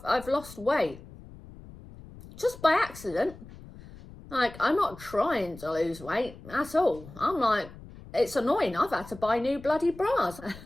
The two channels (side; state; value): left; noise; rumble, 18 dB below the sound